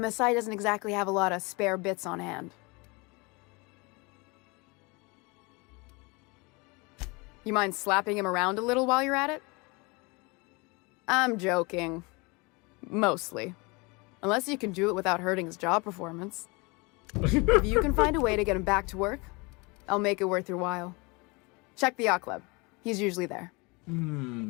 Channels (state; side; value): quieter; right; 27.4 dB